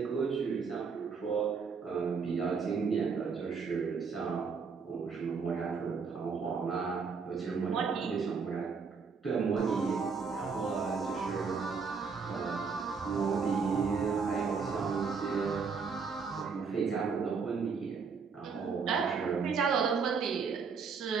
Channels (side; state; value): left; quieter; 5.4 dB